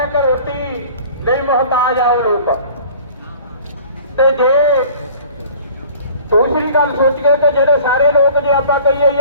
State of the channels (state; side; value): inverted; both; correlation -0.47